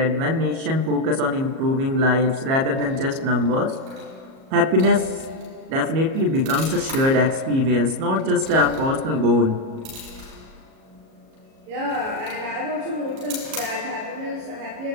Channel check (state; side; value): late; left; 37 ms